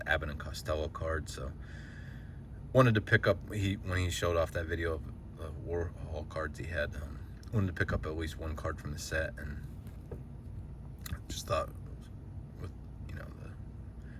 Abbott and Costello card. So wanted to pick up, when he showed off that video of the Warhol cards he had, wanted to pick up at least one card from the set, and just thought, with the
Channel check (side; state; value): both; identical; correlation 1.00